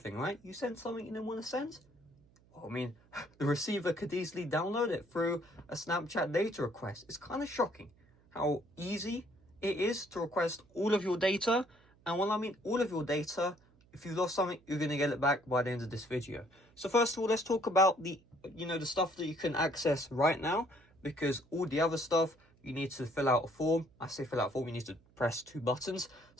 right? You send something you didn't want to send. The receiver could easily download it through a Snapchat data request. It's kind of shocking how easy it is to request all of your data. And when I mean all of your data, if you lost something, you're going to get it back by the end of this video. So first of all, let's talk about the stuff that you can access right now, because all the other stuff, you need to fill out a form. I say fill out a form, you need to press 2 buttons.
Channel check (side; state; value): right; noise; hum, 30 dB below the sound